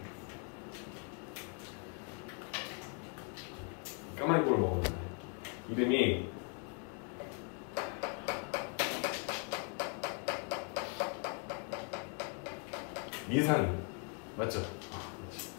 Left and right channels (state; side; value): quieter; right; 38.9 dB